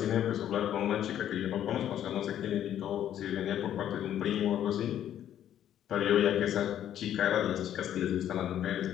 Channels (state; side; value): quieter; right; 10.8 dB